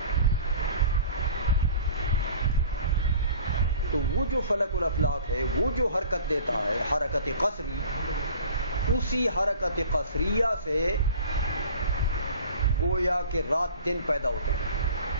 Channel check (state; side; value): inverted; both; correlation -0.44